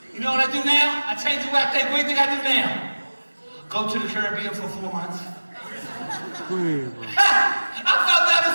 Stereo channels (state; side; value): inverted; both; correlation -1.00